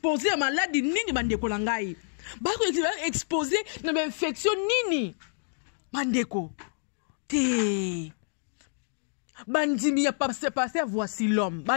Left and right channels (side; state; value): right; silent; digital silence